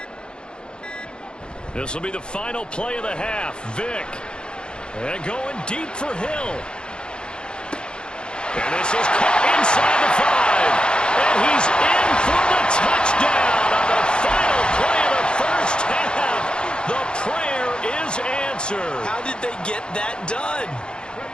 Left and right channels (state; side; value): late; right; 0.050 ms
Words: This will be the final play of the half. Vick. And going deep for Hill. And this is caught inside the 5. And he's in for the touchdown on the final play of the first half. The prayer is answered. How did they get that done?